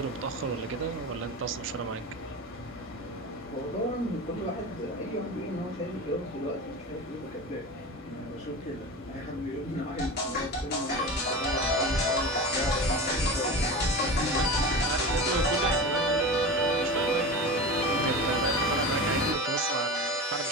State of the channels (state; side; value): normal; both; correlation 0.28